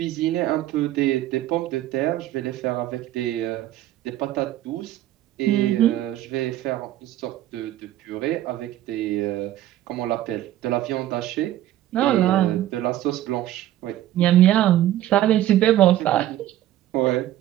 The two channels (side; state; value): left; quieter; 13.5 dB